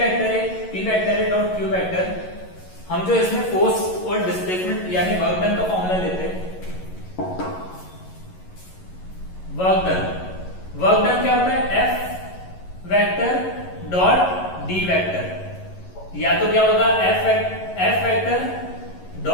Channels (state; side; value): late; right; 11 ms